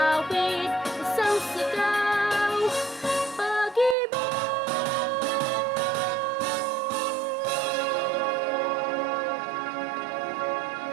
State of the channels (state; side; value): drops out; left; at 4.0 s